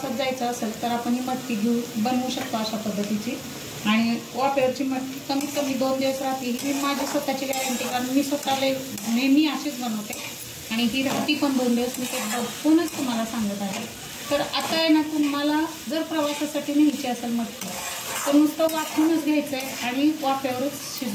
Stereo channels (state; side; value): identical; both; correlation 1.00